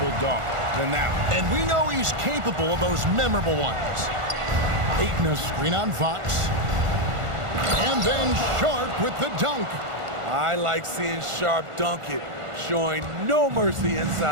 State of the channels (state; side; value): late; left; 1.4 ms